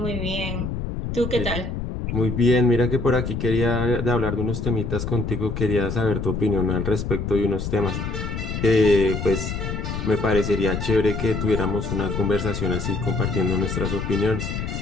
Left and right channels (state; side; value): noise; left; rumble, 4 dB below the sound